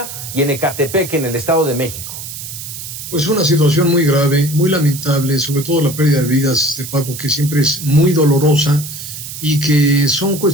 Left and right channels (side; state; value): right; noise; hiss, 10 dB below the sound